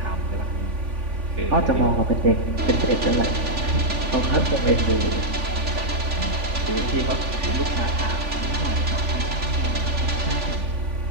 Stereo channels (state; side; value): late; left; 3.5 ms